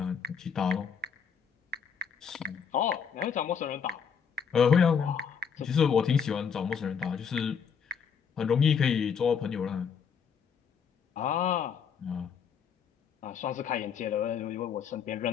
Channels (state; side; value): quieter; right; 6.8 dB